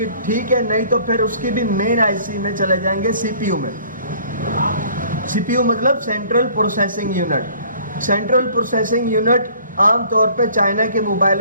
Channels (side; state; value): both; inverted; correlation -0.54